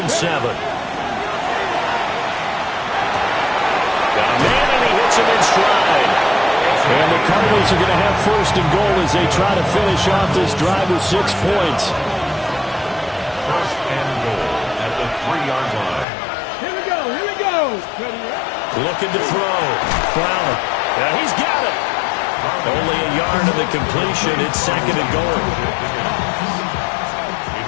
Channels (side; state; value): right; drops out; at 16.1 s